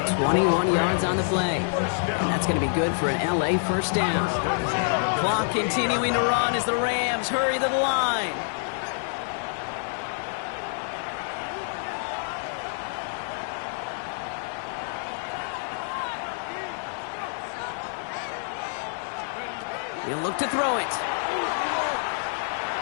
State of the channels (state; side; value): silent; right; digital silence